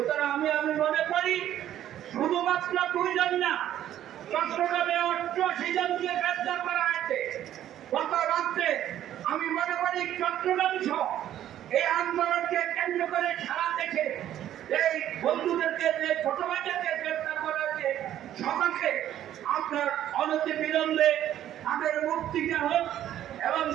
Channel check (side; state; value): left; quieter; 11.8 dB